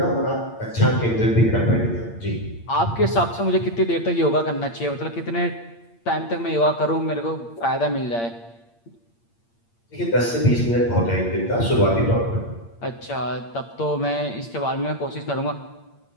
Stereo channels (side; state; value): right; late; 8.7 ms